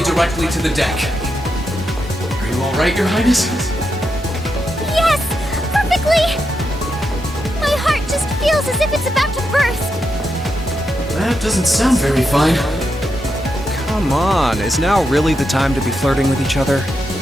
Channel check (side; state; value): both; normal; correlation 0.85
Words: directly to the deck. Are you all right, Your Highness? Yes! Perfectly! My heart just feels as if it's about to burst. That doesn't sound very fine. Come on, is now really the time to be flirting with each other?